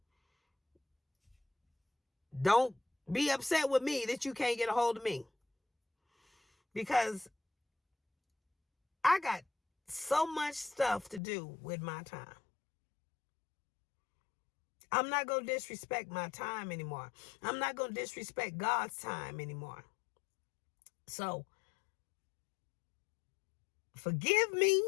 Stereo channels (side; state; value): right; drops out; at 11.2 s